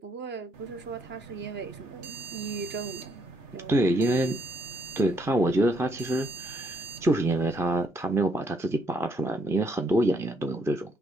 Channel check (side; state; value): both; normal; correlation 0.72